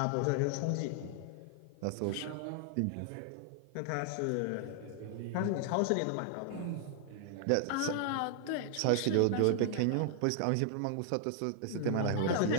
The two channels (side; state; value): both; different; correlation 0.00